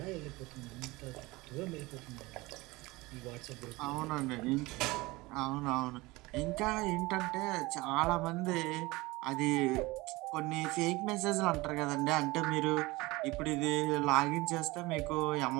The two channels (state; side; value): quieter; left; 21.8 dB